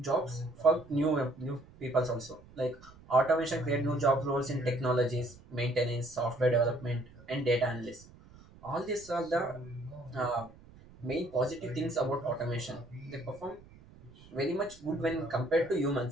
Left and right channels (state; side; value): noise; right; rumble, 22 dB below the sound